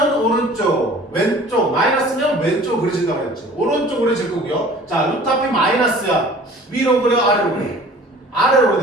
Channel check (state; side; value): normal; both; correlation 0.47